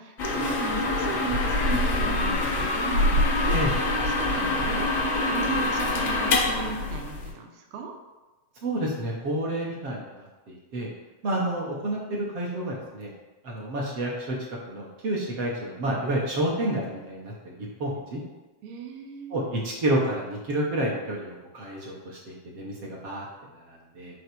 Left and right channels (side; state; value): left; late; 7.5 ms